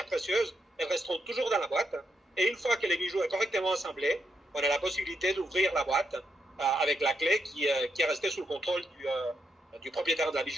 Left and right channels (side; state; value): both; normal; correlation 0.81